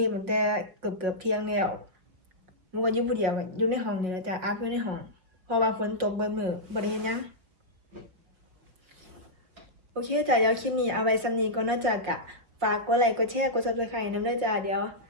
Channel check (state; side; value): late; left; 5.5 ms